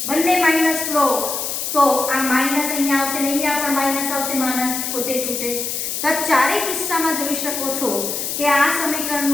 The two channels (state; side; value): noise; left; hiss, 3 dB below the sound